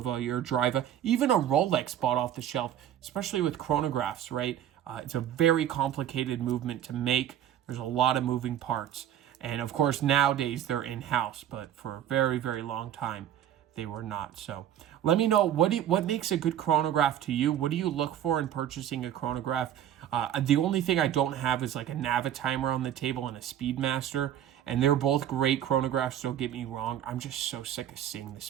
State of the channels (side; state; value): left; quieter; 10.8 dB